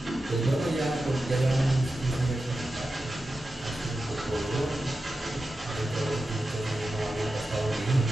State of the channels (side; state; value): both; normal; correlation 0.92